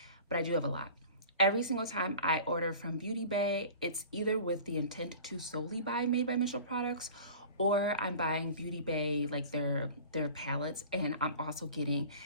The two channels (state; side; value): inverted; both; correlation -0.42